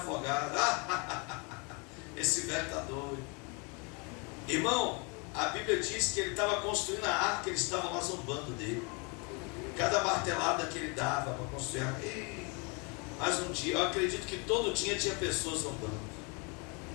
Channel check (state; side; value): quieter; right; 32.1 dB